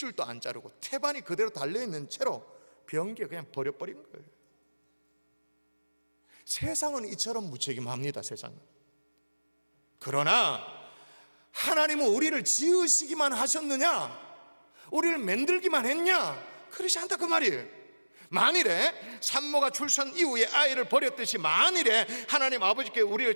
안 자르고 태반이 그대로 달려있는 채로 변기에 그냥 버려버린 거예요. 세상은 이처럼 무책임합니다. 세상은. 그러나 하나님은 우리를 지으시기만 하셨느냐, 우리를 만들기만 했냐? 그렇지 않다 그 말이에요. 만일에 산모가 출산 이후에 아이를 버렸듯이, 만일에 하나님 아버지께 우리를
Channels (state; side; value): inverted; both; correlation -1.00